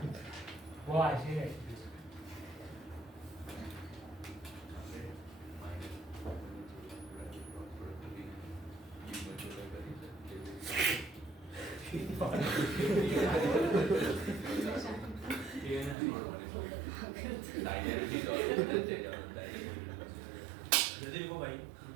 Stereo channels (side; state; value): left; drops out; at 16.0 s